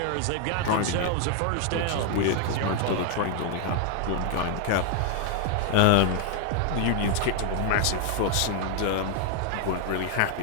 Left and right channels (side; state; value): both; different; correlation 0.00